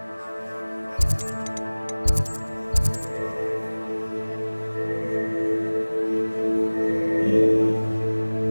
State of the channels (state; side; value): inverted; both; correlation -1.00